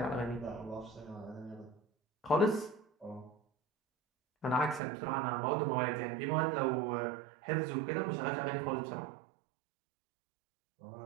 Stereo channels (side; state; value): left; drops out; at 4.8 s